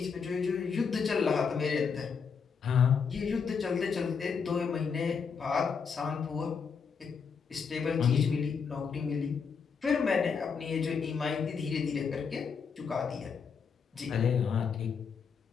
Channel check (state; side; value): quieter; right; 6.0 dB